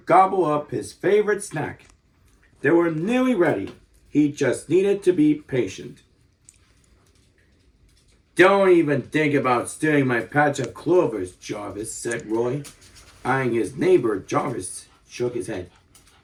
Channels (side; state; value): both; identical; correlation 1.00